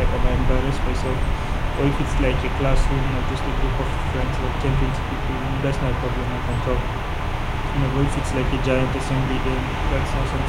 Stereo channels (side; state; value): both; identical; correlation 1.00